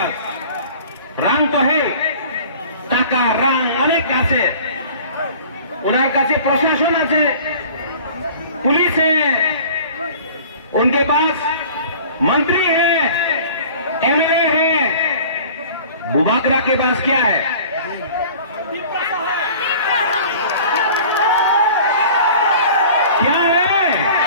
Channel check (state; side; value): inverted; both; correlation -0.46